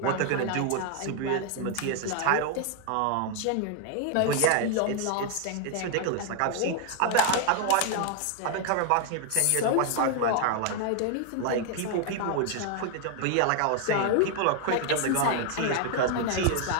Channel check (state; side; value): different; both; correlation 0.00